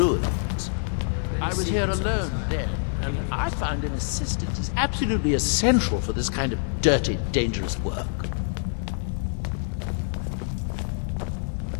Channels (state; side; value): silent; right; 61 dB below the other